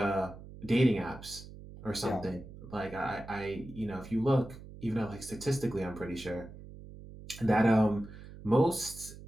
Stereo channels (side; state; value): right; noise; hum, 15 dB below the sound